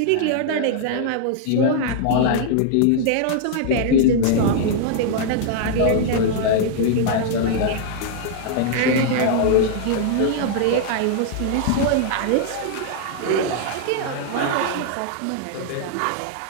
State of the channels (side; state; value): both; different; correlation -0.01